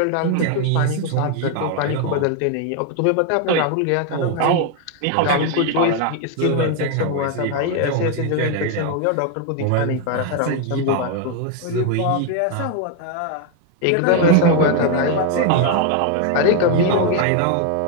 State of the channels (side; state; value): both; different; correlation 0.01